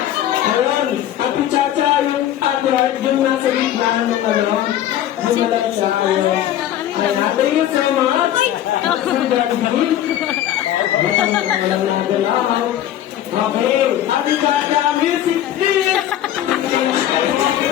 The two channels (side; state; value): right; quieter; 12.0 dB